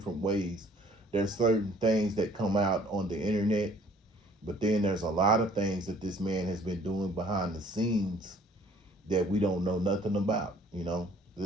ways. There's certain things that come out on the internet, but then there's a lot of things that this man has been doing behind the scenes that we don't know nothing about.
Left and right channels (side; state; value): both; normal; correlation 0.56